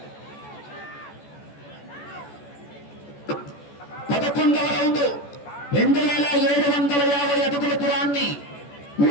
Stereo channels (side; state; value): right; late; 14 ms